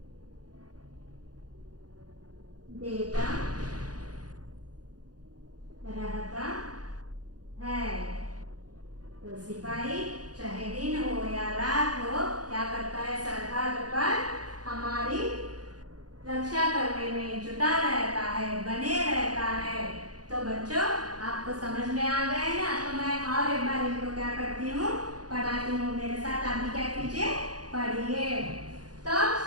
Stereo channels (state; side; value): late; left; 0.69 ms